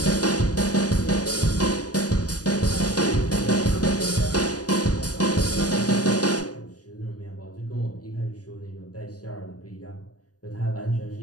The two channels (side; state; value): right; late; 0.67 ms